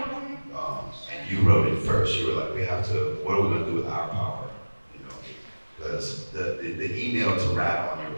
And you wrote it first. You were like, we have to. What are we gonna do with our power? You know, because the email to rat on your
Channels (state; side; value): inverted; both; correlation -1.00